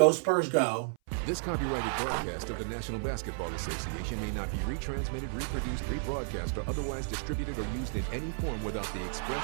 Spurs, go. This copyrighted broadcast of the National Basketball Association may not be retransmitted, reproduced, rebroadcast, or otherwise distributed or used in any form without the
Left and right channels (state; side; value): silent; left; 56 dB below the other